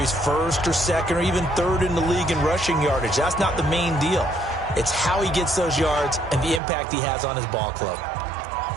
1st or 2nd or even 3rd in the league in rushing yardage. That's not the main deal. It's how he gets those yards and the impact he has on his ball club.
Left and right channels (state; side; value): drops out; left; at 6.6 s